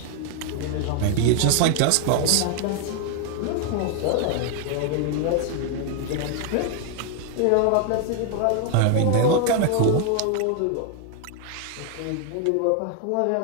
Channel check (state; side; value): different; both; correlation 0.00